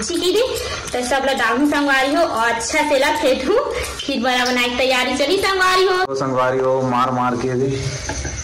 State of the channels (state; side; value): identical; both; correlation 1.00